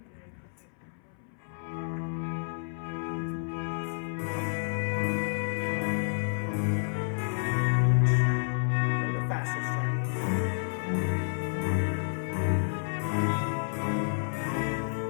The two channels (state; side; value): silent; right; 58 dB below the other